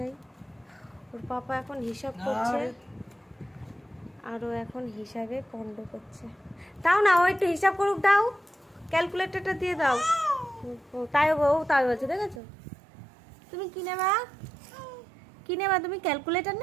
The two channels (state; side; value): drops out; left; at 12.4 s